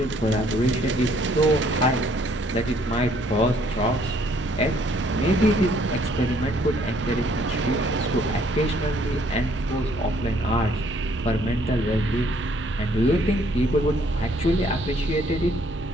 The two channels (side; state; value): both; normal; correlation 0.64